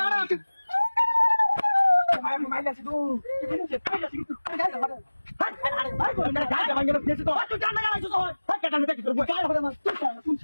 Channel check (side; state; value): both; inverted; correlation -1.00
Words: আনা ভাই মাইলা শুধু কি বলছিস পাইলা শুধু গাড়ি ভাড়া ভাই কোন গাড়ি ভাঙ্গা ফেসে তো তুই জানা না তো ভাই কাটানো দেখি তোর গাড়ি ভাড়া তুই কোন